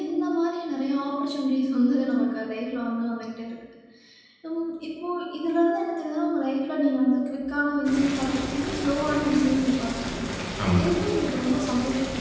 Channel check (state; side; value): identical; both; correlation 1.00